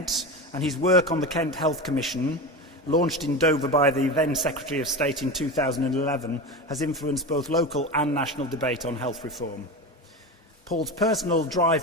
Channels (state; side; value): normal; both; correlation 0.24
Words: and his work on the Kent Health Commission, launched in Dover by the then Secretary of State in 2011, has influenced both local and national debate on health reform. Paul's personal